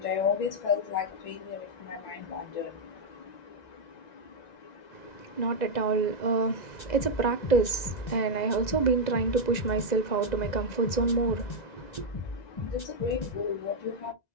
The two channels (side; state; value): right; late; 1.9 ms